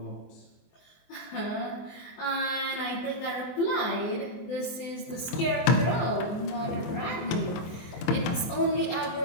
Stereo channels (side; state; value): right; late; 24 ms